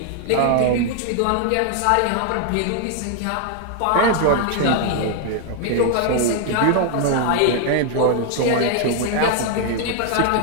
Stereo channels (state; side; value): different; both; correlation 0.00